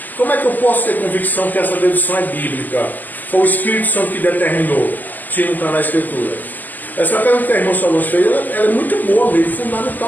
Como é que eu posso ter convicção que essa dedução é bíblica? Foi o Espírito Santo que determinou, se não está na Escritura? Essa pergunta que a irmã Salomão fez, ela é muito boa mesmo,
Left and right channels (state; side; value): late; right; 0.084 ms